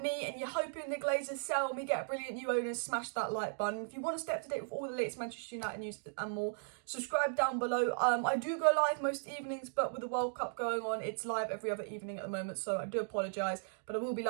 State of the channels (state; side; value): silent; left; digital silence